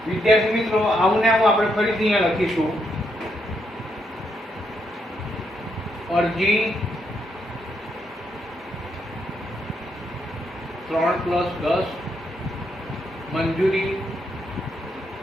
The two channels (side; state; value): both; normal; correlation 0.78